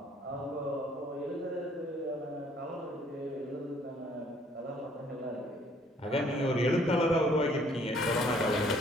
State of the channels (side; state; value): both; normal; correlation 0.61